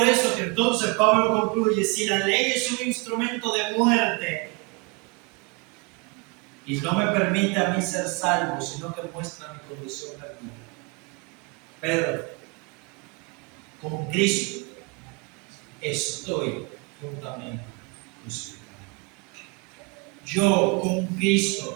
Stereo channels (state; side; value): quieter; left; 30.2 dB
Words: eso que entonces Pablo concluye: si la ley es un instrumento de muerte, y no me permite a mí ser salvo, sino que muestra mi condición perdida. Pero con Cristo estoy juntamente crucificado. Yo con